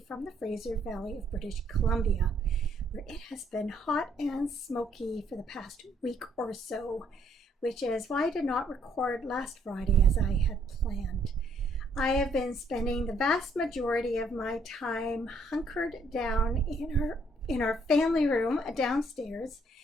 from the Fraser Valley of British Columbia, where it has been hot and smoky for the past week or so, which is why I did not record last Friday as I had planned. I have been spending the vast majority of my time hunkered down in our family room downstairs,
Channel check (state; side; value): normal; both; correlation 0.67